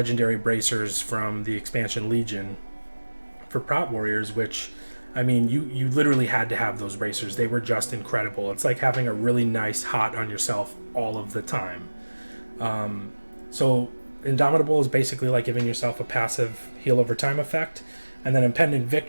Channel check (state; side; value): inverted; both; correlation -1.00